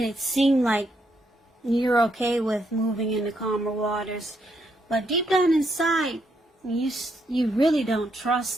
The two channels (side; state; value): both; normal; correlation 0.77